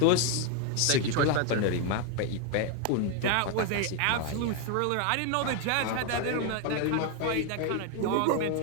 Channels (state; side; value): different; both; correlation 0.01